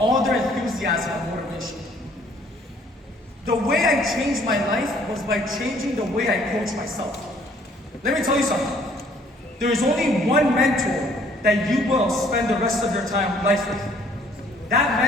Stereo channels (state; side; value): normal; both; correlation 0.60